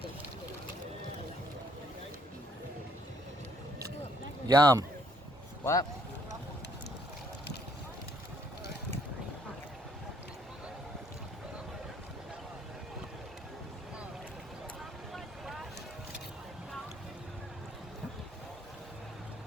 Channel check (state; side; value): normal; both; correlation 0.67